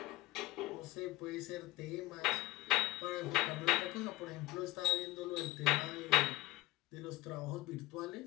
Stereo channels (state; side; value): quieter; right; 18.9 dB